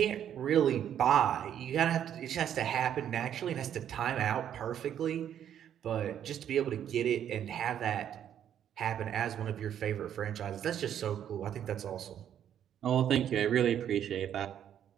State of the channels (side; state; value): left; quieter; 9.8 dB